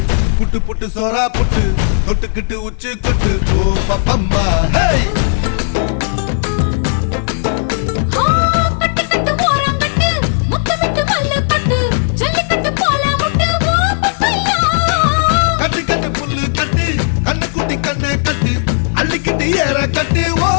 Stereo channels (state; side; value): silent; right; digital silence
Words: புட்டு புட்டு சோரா புட்டு தொட்டுக்கிட்டு உச்சு கொட்டு ஓ பப்பம்மா கட்டு கட்டு ஓரம் கட்டு முத்து விட்டு மல்லு கட்டு ஜல்லிக்கட்டு போல முட்டு ஓ பப்பையா கட்டு கட்டு புல்லு கட்டு கண்ணு குட்டி கண்ணை கட்டு அள்ளிக்கிட்டு ஏற கட்டு ஓ